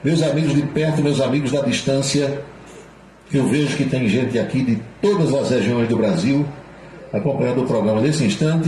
meus amigos de perto, meus amigos da distância, eu vejo que tem gente aqui de todas as regiões do Brasil acompanhando o programa nesse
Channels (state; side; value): identical; both; correlation 1.00